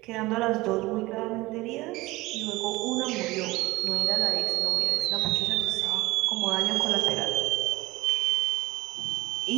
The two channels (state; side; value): quieter; left; 20.3 dB